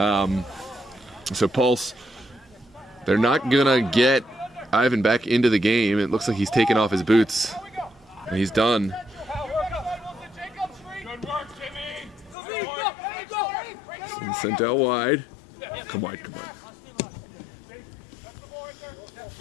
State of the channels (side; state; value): right; drops out; at 12.4 s